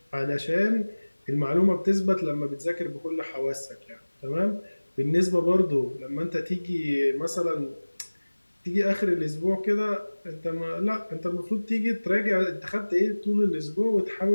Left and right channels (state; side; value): inverted; both; correlation -1.00